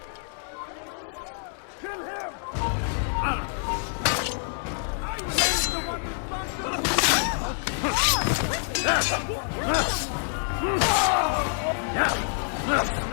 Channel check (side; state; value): right; silent; 60 dB below the other